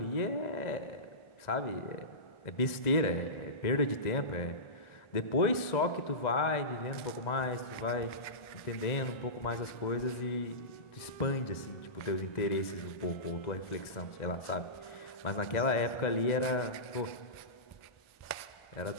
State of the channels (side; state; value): right; late; 2.0 ms